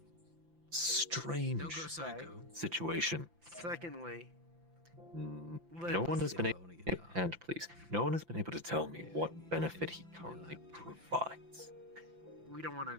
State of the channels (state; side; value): late; left; 5.9 ms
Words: strange Don't go psycho. situation. Secondly, No one has been able, and please, no one has been able to tell me what benefit he currently provides. we don't want